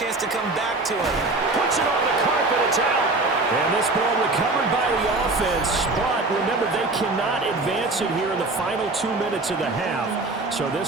to come back to it. Puts it on the carpet, it's out. And this ball recovered by the offense, but remember, they cannot advance it here in the final 2 minutes of the half. So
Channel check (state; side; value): quieter; left; 3.2 dB